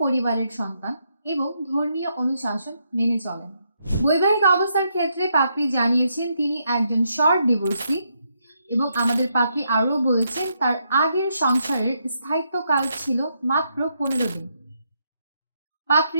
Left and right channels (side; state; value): both; inverted; correlation -0.78